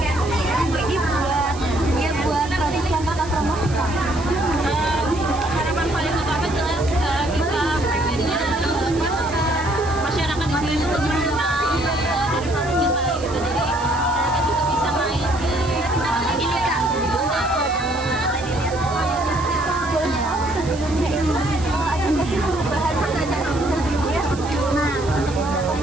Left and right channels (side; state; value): right; noise; hiss, 16 dB below the sound